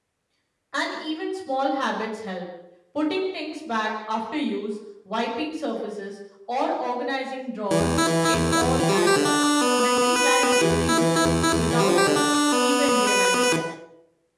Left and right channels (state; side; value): identical; both; correlation 1.00